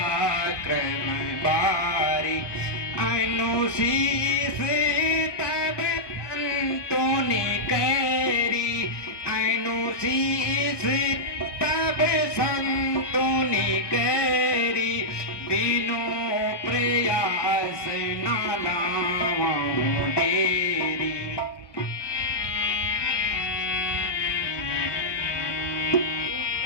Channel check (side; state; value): right; late; 1.2 ms